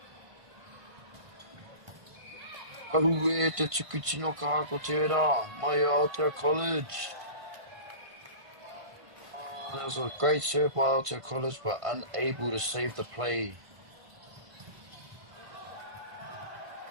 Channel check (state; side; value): late; left; 1.5 ms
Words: Ahu e te tuku tino ka ako tērā, mai Aotea College. Oh, that was a great serve by Aotea College, but unable to save the play.